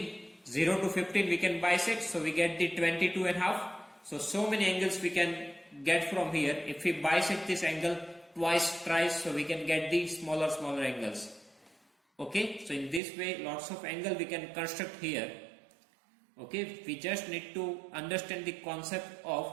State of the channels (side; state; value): left; drops out; at 13.0 s